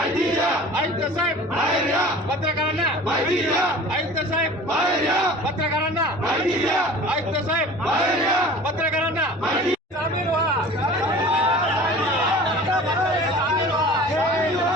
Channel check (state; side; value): normal; both; correlation 0.42